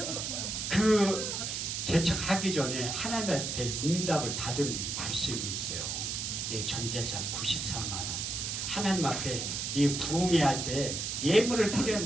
그 개척하기 전에 하나님한테 응답을 받은 말씀이 있어요. 내 전재산 94만 원. 하나님 앞에 이 부흥회 할 때 예물을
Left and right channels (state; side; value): noise; right; hiss, 3 dB below the sound